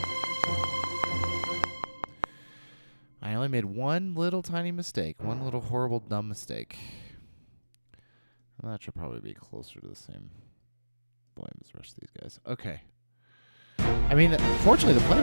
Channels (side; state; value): both; inverted; correlation -1.00